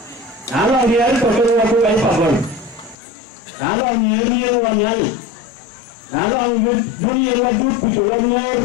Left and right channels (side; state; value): right; drops out; at 3.0 s